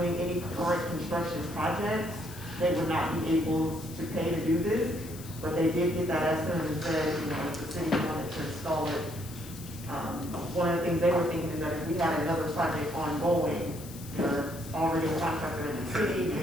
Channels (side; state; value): left; noise; hiss, 16 dB below the sound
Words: any current construction projects, they would not be able to pay to do this. But they did get that estimate and said, you know, if the city wanted to install it. One of the things they were thinking is that if we had another project ongoing, you know, that's already a contractor in the city,